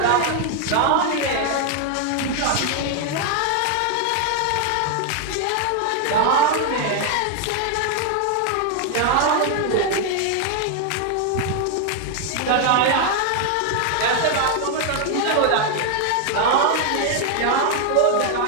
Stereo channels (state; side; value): different; both; correlation 0.00